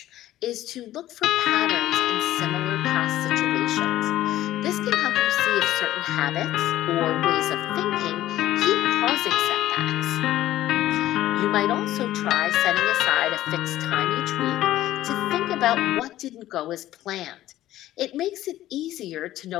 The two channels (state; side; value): quieter; right; 14.1 dB